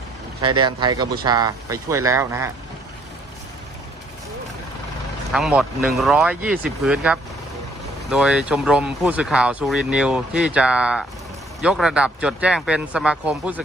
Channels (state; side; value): normal; both; correlation 0.64